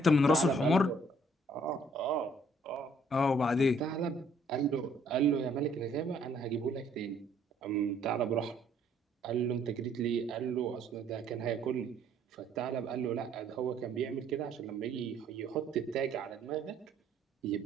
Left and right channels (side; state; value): both; normal; correlation 0.63